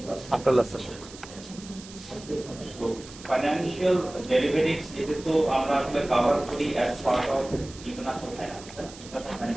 after last session. তো ফাইনান্সিয়াল ডেরিভেটিভস এটা তো আমরা আসলে কভার করি as part of international finance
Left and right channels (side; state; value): right; noise; hiss, 17 dB below the sound